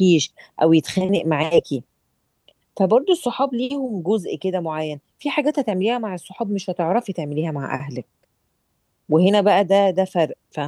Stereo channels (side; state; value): both; identical; correlation 1.00